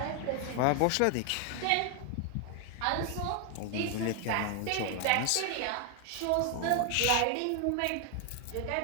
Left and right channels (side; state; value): both; different; correlation 0.00